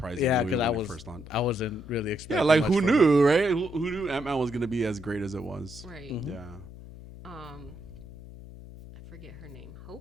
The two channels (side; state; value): left; noise; hum, 16 dB below the sound